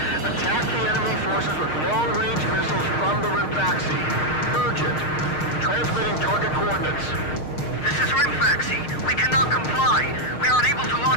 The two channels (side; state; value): right; late; 6.5 ms